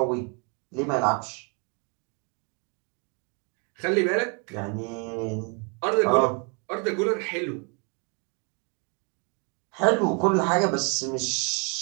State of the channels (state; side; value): quieter; left; 34.5 dB